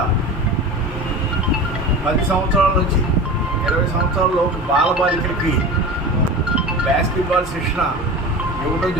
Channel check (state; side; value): normal; both; correlation 0.32